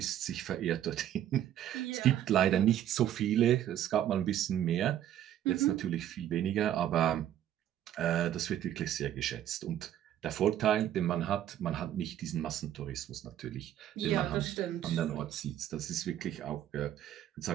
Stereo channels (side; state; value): left; quieter; 11.4 dB